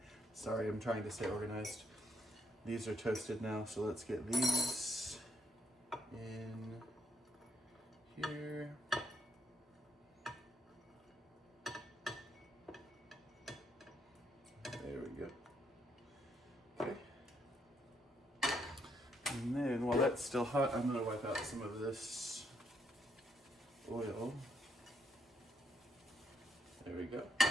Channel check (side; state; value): both; normal; correlation 0.75